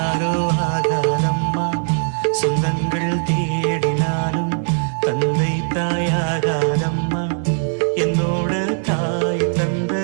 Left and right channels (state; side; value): silent; left; 66 dB below the other